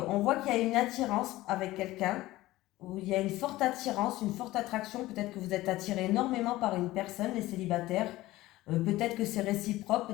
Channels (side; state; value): right; quieter; 17.4 dB